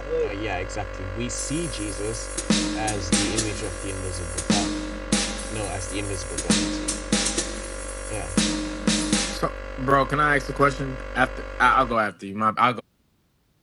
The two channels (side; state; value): both; identical; correlation 1.00